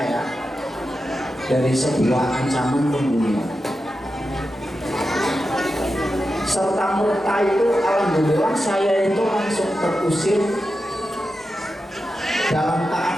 dari sebuah ancaman pembunuhan. Serta merta itu alhamdulillah saya itu langsung terusir dalam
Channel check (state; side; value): normal; both; correlation 0.90